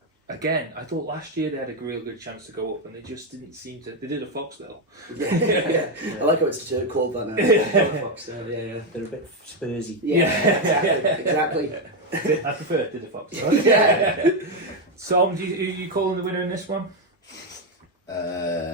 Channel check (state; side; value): normal; both; correlation 0.05